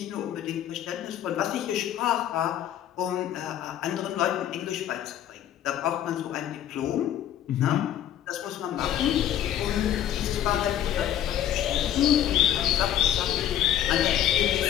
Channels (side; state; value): right; quieter; 11.1 dB